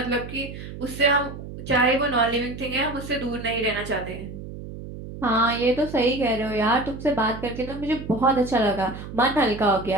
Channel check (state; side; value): noise; right; hum, 11 dB below the sound